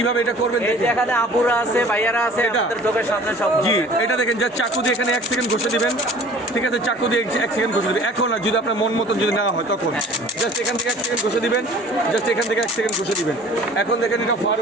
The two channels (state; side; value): normal; both; correlation 0.47